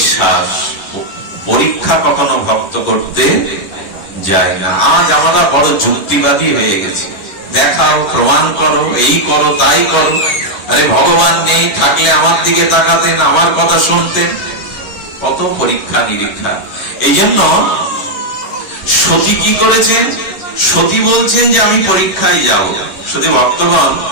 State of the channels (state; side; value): late; right; 11 ms